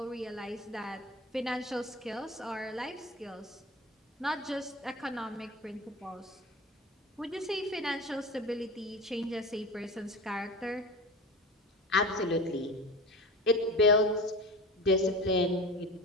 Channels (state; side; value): normal; both; correlation 0.32